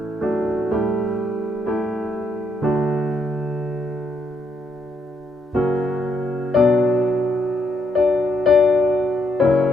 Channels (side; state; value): both; normal; correlation 0.76